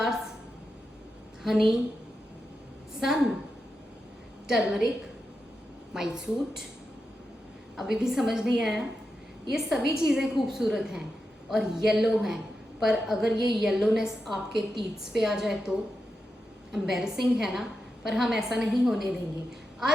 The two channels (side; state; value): both; normal; correlation 0.88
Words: honey, sun, turmeric, my suit. अभी भी समझ नहीं आया? ये सभी चीज़ें खूबसूरत हैं और येलो हैं, पर अगर ये येलोनेस आपके टीथ्स पे आ जाए तो एम्बैरेसिंग है ना, पर हम ऐसा नहीं होने देंगे।